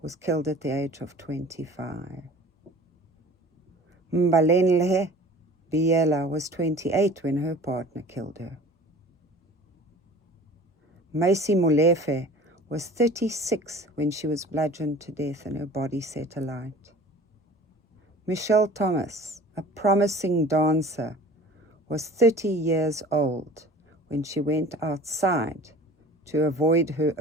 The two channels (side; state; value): both; normal; correlation 0.44